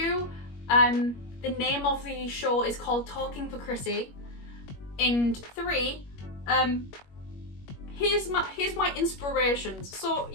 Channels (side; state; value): right; late; 21 ms